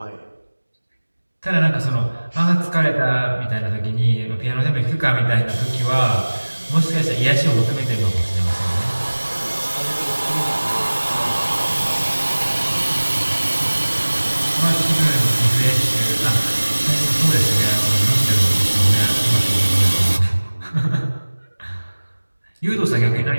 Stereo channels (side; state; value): both; inverted; correlation -1.00